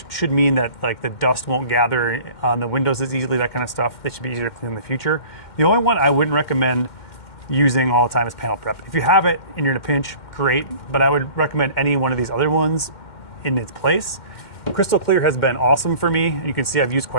should mean that like the dust won't gather on the windows as easily, that kind of stuff. They should be easier to clean in the future. The only one I wouldn't recommend using all the time is panel prep. If you have it and you're in a pinch, great, but I would recommend any one of these other ones in its place. Crystal Clear has been awesome for me. You can see I've used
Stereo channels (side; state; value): right; late; 2.1 ms